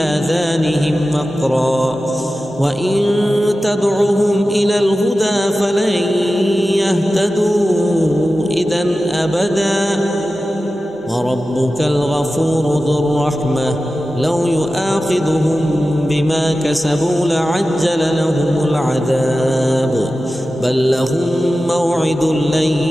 وقرا وإن تدعهم إلى الهدى فلن يهتدوا إذا أبدا. وربك الغفور ذو الرحمة لو يؤاخذهم بما كسبوا لعجل لهم العذاب بل لهم موعد لن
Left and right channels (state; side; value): normal; both; correlation 0.94